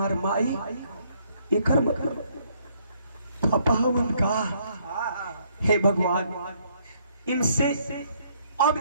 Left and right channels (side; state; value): both; inverted; correlation -0.68